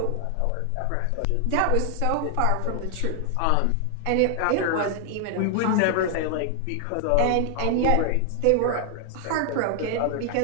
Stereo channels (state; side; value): different; both; correlation 0.00